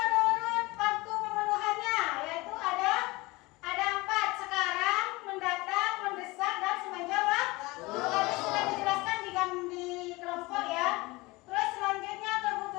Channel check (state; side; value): quieter; right; 22.6 dB